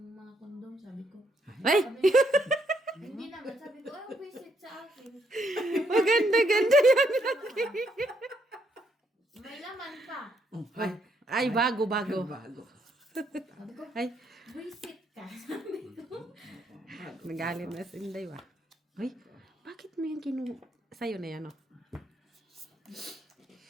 mga kondom? Sabi ko. Ay! Sabi, hindi naman. Sabi ko, ay, visit sa akin. Maganda-ganda yan. May laman pa. Ay, ay bago. Bago. Sabi ko, Ay, visit ka. Sabi ko. nagalit na si Inday ba? Ay, bakit mo yan sa'yo na yan, oh?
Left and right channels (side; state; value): both; normal; correlation 0.74